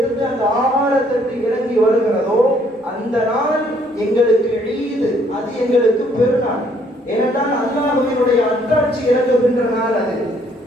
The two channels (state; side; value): normal; both; correlation 0.65